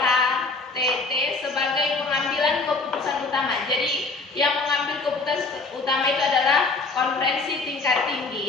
KTT sebagai pengambilan keputusan utama. Jadi yang mengambil keputusan utama itu adalah konferensi tingkat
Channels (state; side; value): quieter; right; 3.8 dB